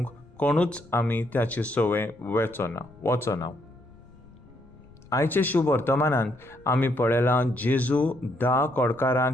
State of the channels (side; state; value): left; noise; rumble, 25 dB below the sound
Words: कोणूच आमी त्याची सवय वचना. आयचे शुभ वर्तमानांत आमी पळयलां जेजू 10